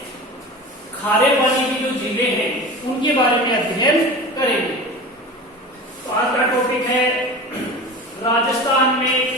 खारे पानी की जो झीलें हैं उनके बारे में अध्ययन करेंगे। तो आज का टॉपिक है राजस्थान में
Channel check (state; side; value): normal; both; correlation 0.33